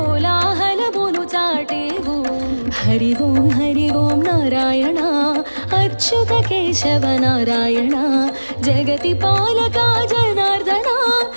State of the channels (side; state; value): both; inverted; correlation -1.00